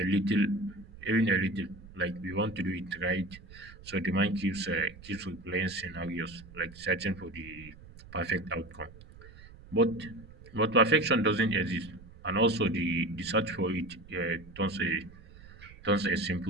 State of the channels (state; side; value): noise; right; rumble, 19 dB below the sound